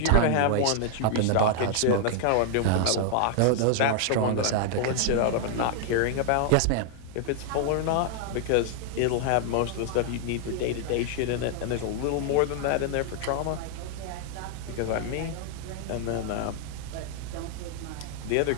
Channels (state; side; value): different; both; correlation 0.00